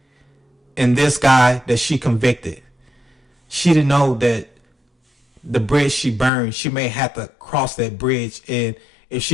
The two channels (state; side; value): drops out; right; at 6.3 s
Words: And this guy that she convicted, she didn't know that the bridge she burned, she may have to cross that bridge. And if